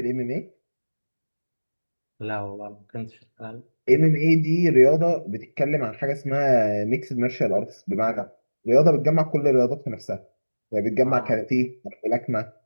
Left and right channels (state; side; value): inverted; both; correlation -1.00